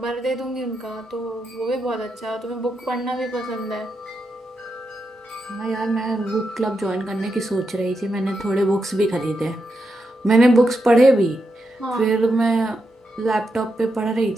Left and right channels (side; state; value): both; normal; correlation 0.85